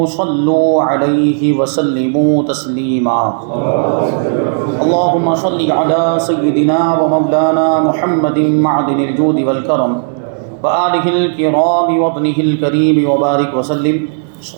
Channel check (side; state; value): left; silent; digital silence